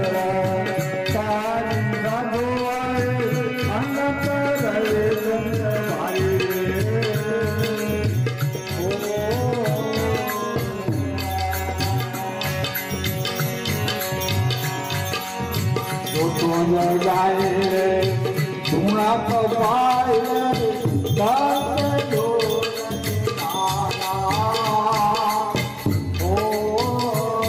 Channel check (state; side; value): identical; both; correlation 1.00